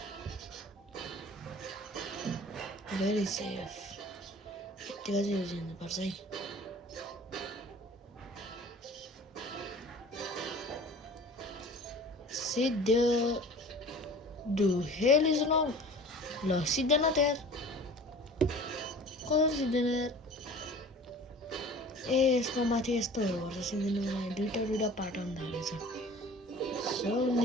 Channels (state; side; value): normal; both; correlation 0.43